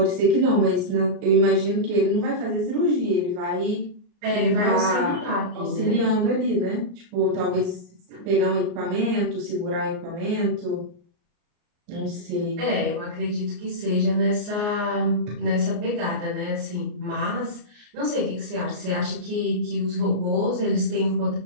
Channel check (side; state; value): left; late; 34 ms